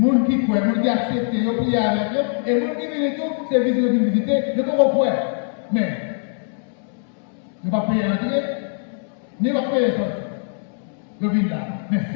gens qui croient, les gens qui acceptent, ils prient avec eux, et les gens qui viennent tout, c'est visiter, ils ne peuvent pas. Mais, ils ne vont pas payer l'entrée, ni pas payer sortir. Ils viennent là. Mais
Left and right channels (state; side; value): silent; right; 61 dB below the other